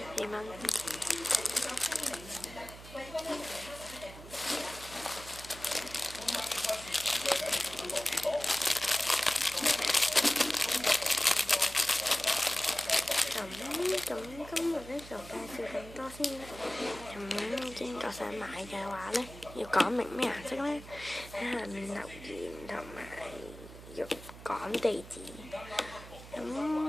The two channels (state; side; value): noise; right; hum, 16 dB below the sound